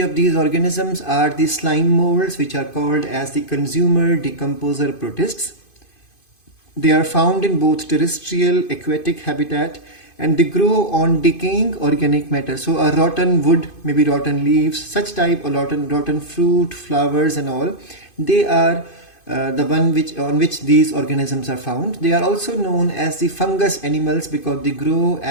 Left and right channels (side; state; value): right; late; 2.5 ms